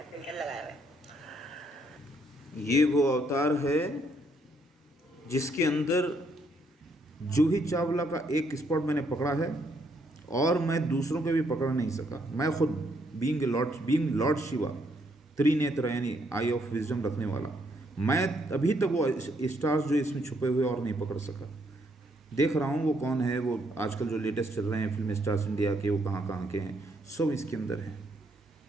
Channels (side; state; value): both; normal; correlation 0.72